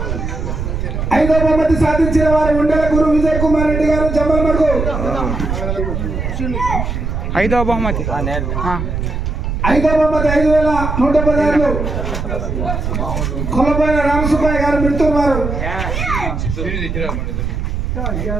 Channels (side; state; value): right; noise; rumble, 3 dB below the sound